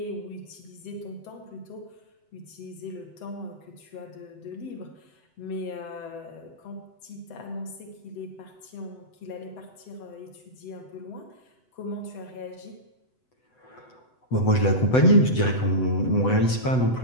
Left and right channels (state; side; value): late; right; 7.9 ms